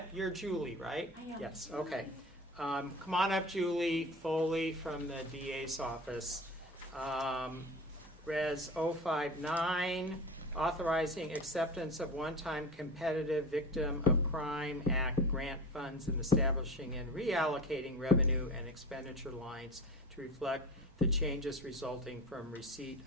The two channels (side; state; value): both; normal; correlation 0.32